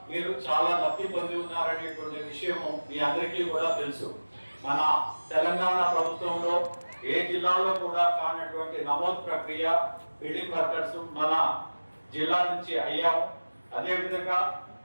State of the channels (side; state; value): both; inverted; correlation -1.00